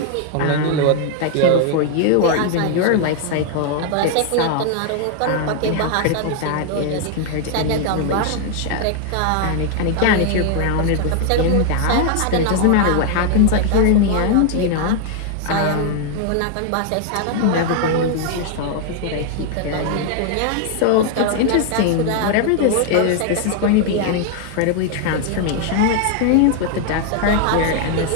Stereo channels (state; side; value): different; both; correlation 0.00